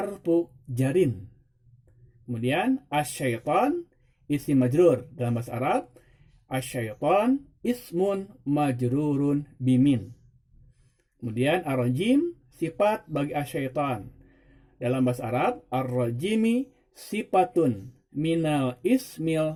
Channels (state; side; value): identical; both; correlation 1.00